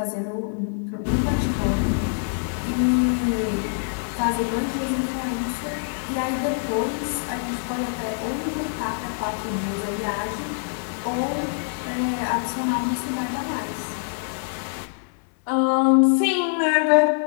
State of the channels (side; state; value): right; silent; 55 dB below the other